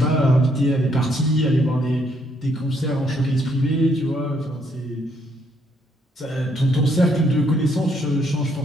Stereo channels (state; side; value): normal; both; correlation 0.71